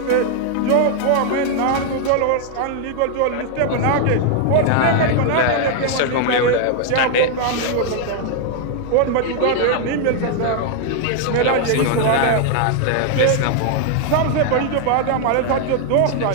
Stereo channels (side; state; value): both; different; correlation 0.00